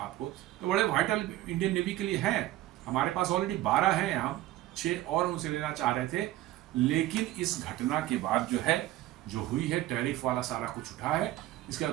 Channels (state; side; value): quieter; left; 15.2 dB